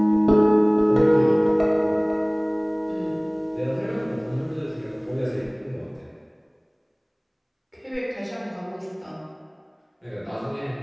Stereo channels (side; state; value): both; identical; correlation 1.00